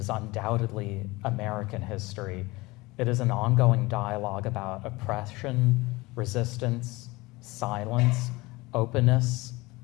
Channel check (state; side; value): quieter; right; 22.1 dB